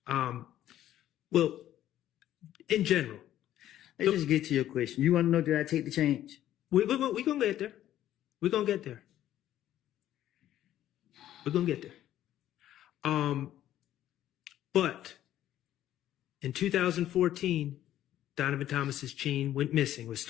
Well, in general. Let's just get to your question. You want to know, did I take the change? We're going to get there. We're going to get there. We're going to get there. But in 2014, Donovan Thomas's chain went missing, was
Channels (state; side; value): quieter; right; 12.4 dB